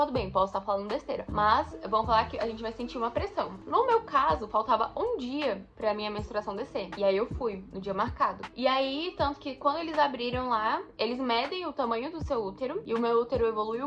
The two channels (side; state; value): both; identical; correlation 1.00